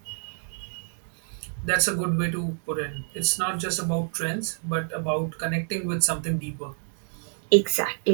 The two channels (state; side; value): silent; left; digital silence